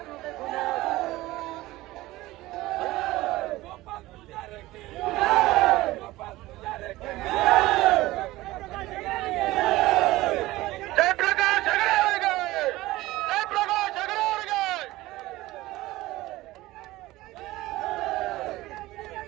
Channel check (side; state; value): left; quieter; 18.1 dB